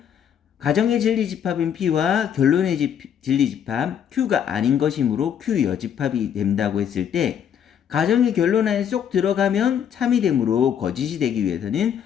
가정의 진리집합인 p와 결론의 진리집합 q가 아닌 것이므로 q 여집합이 된다고 했을 때, 가정의 결론 안에 쏙 들어가면 참이 되므로 거짓이 되기 위해서는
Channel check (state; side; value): quieter; right; 8.8 dB